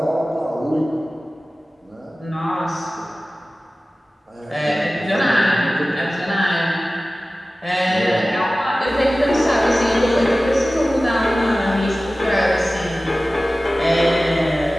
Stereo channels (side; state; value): both; normal; correlation 0.97